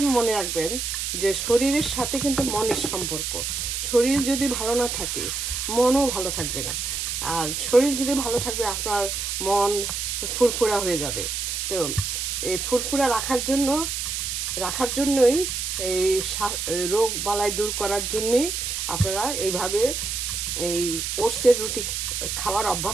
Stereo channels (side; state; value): right; noise; hiss, 2 dB below the sound